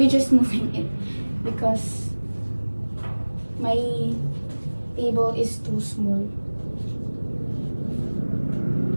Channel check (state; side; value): inverted; both; correlation -1.00